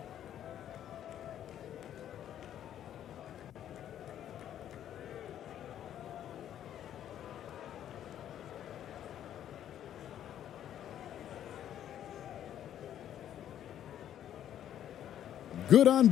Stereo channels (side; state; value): right; quieter; 10.7 dB